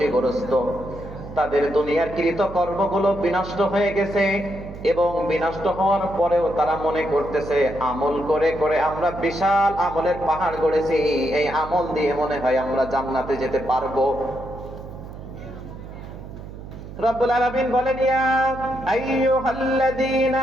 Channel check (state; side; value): noise; right; hum, 13 dB below the sound